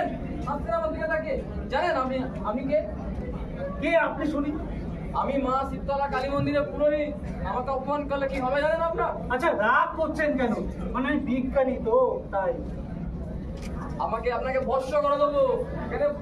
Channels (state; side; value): identical; both; correlation 1.00